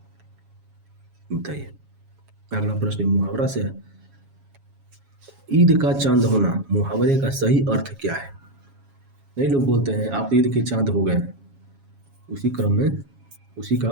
बताइए, अगला प्रश्न मुहावरा से है। ईद का चांद होना मुहावरे का सही अर्थ क्या है? नहीं, लोग बोलते हैं आप ईद के चांद हो गए। उसी क्रम में उसी का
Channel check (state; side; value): late; left; 7.3 ms